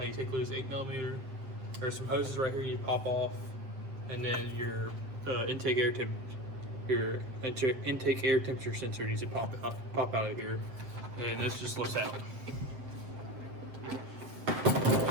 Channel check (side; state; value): left; late; 7.6 ms